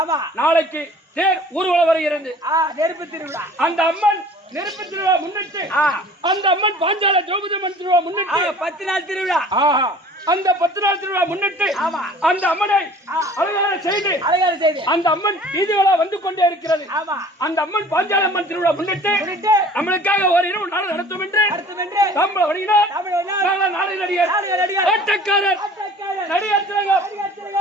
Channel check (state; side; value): normal; both; correlation 0.48